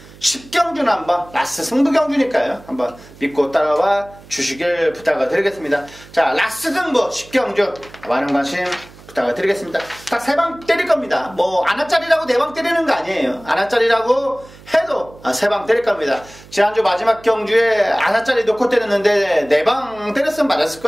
10경주는 한번 라스 승부경주니까요. 한번 믿고 따라와 주시길 부탁을 드리겠습니다. 자, 라스 승부 10경주 많은 관심 부탁을 드리겠습니다. 딱 3방 때릴 겁니다. 뭐 안아짜리라고 4방 때리는 거 아니에요. 안아짜리라고 해도 3방 때릴 겁니다. 지난주 마지막 경주에 안아짜리 놓고 때렸는데 4방 때렸으면 맞았을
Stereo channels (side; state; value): right; noise; hum, 22 dB below the sound